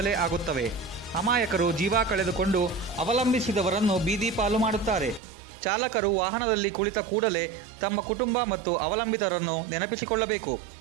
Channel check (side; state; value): left; drops out; at 5.2 s